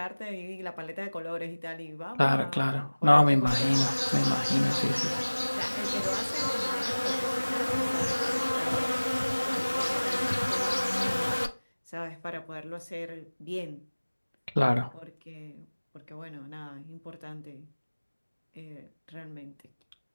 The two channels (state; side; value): inverted; both; correlation -1.00